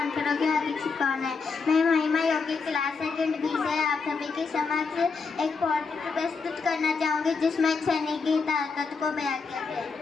की हार्दिक शुभकामनाएं। मैं महिमा योगी क्लास सेकंड बी से आप सभी के समक्ष एक पोएट्री प्रस्तुत करना चाहूँगी जिसमें एक सैनिक की ताकत को बयां किया गया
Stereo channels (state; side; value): quieter; right; 4.8 dB